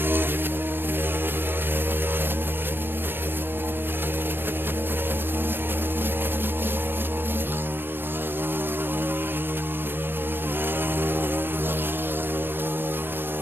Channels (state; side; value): late; left; 0.098 ms